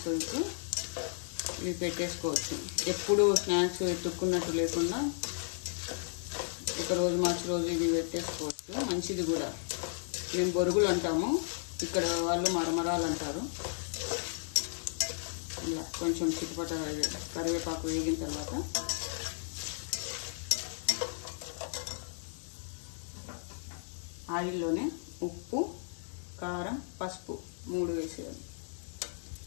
ఇవి పెట్టేసుకోవచ్చు. ఎప్పుడు స్నాక్స్ ఎత్తుక్కున్నట్టు లేకుండా ఒకరోజు మార్చి రోజు ఇవి పెట్టేసుకోవచ్చు. మంచిది కూడా. మేము బొరుగులు అంటాము, ఇక్కడ వాళ్ళు మరమరాలు అంటారు. ఇలా కొంచెం చిట్టుపట కరివేపాకు వేగిన తర్వాత ఆయిల్లోనే ఉప్పు, కారం, పసుపు 3 వేసేయాలి.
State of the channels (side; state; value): right; silent; 55 dB below the other